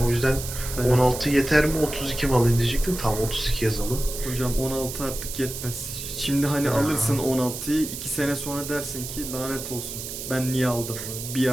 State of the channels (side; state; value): right; noise; hiss, 8 dB below the sound